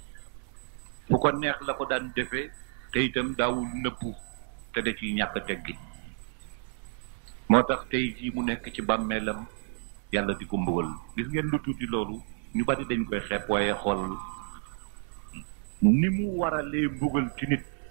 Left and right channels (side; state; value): left; silent; 58 dB below the other